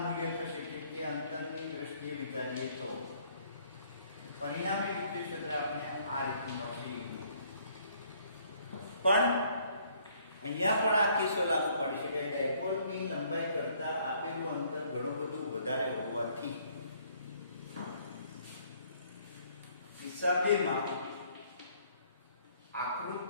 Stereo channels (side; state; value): both; inverted; correlation -0.63